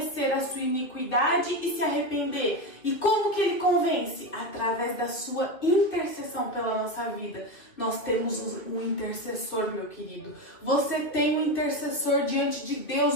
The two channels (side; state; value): right; late; 2.8 ms